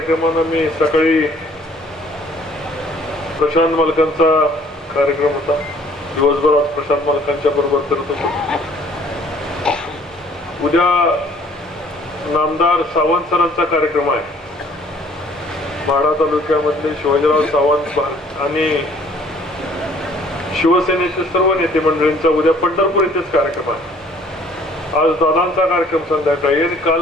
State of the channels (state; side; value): normal; both; correlation 0.57